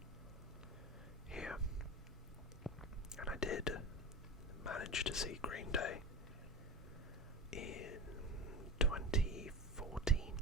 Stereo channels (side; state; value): both; normal; correlation 0.31